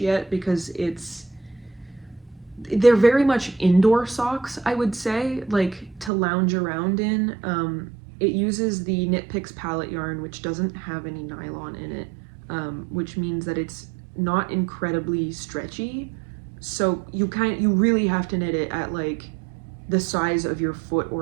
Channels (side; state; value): left; drops out; at 6.1 s